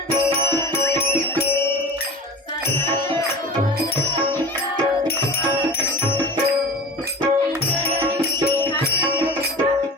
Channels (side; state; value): both; normal; correlation 0.35